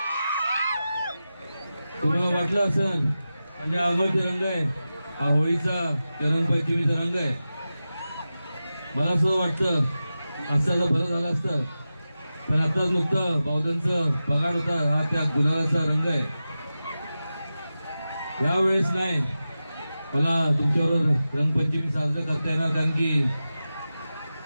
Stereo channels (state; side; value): inverted; both; correlation -0.93